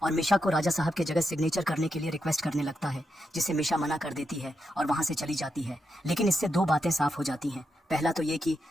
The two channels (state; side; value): normal; both; correlation 0.84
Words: और मिशा को राजा साहब के जगह सिग्नेचर करने के लिए रिक्वेस्ट करने लगता है, जिसे मिशा मना कर देती है और वहां से चली जाती है। लेकिन इससे दो बातें साफ हो जाती हैं। पहला तो ये कि